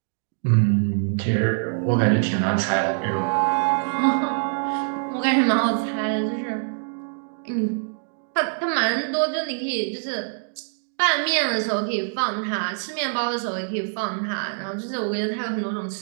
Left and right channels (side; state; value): left; silent; digital silence